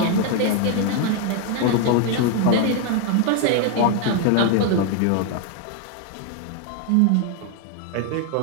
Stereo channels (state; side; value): different; both; correlation 0.01